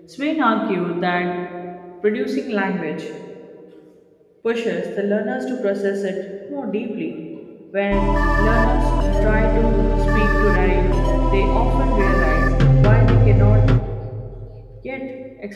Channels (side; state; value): both; identical; correlation 1.00